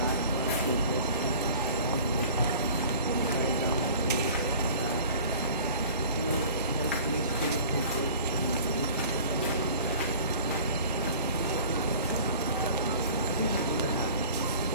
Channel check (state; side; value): inverted; both; correlation -0.44